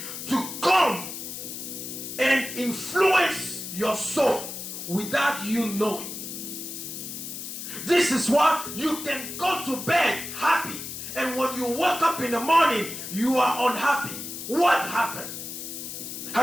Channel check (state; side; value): noise; left; hiss, 8 dB below the sound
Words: to come and influence your soul without you knowing. This is why you can go to bed happy, and when you wake up in the morning, you are unhappy. What happened?